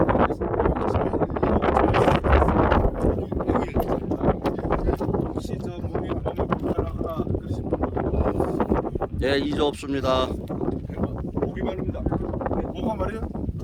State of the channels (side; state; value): both; identical; correlation 1.00